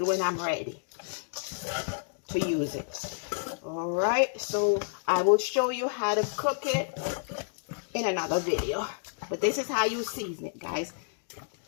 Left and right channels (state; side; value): silent; right; digital silence